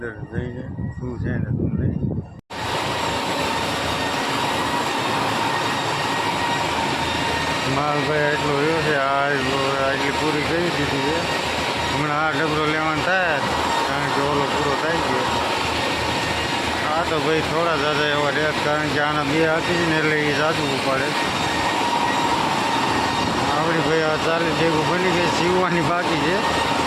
જઈને શું છે ને શું નહીં. માલ ભાઈ એટલો રહ્યો છે, એટલી પૂરી કરી દીધી છે. હમણાં આ ડબરો લેવાનો થાય, કારણ કે ઓલો પૂરો થઈ ગયો. આ તો ભાઈ થોડા જાજા એવા રહે, કારણ કે આના 2 આપી ને એટલે એ જાજુ ઉપાડે. આપણી ભાઈ આ 40 ભેગું બની ગઈ, સીવવાની બાકી છે.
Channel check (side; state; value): both; identical; correlation 1.00